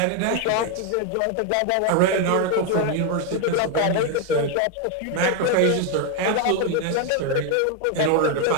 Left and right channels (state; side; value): different; both; correlation 0.01